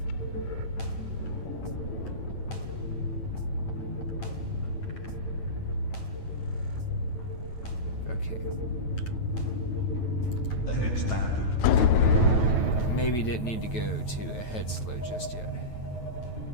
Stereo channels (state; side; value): late; right; 9.1 ms